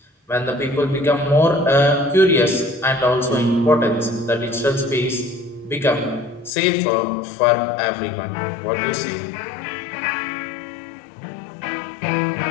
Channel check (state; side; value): drops out; right; at 6.5 s